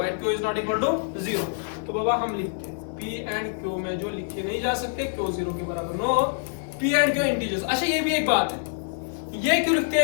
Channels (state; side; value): silent; right; digital silence